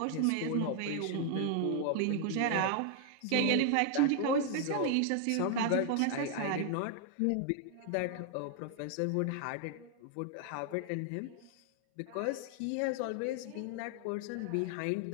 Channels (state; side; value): different; both; correlation 0.00